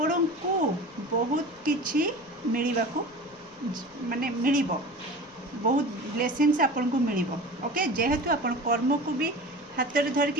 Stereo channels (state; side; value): noise; left; rumble, 30 dB below the sound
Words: को बहुत किछि मिलवा को माने मिलिबो बहुत ब्लेसिंग्स आपण को मिलिबो ओके। जेहेतु आपण कर्म को भी हाथ में